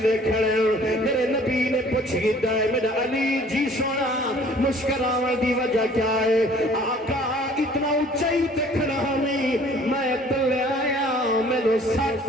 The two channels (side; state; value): both; normal; correlation 0.54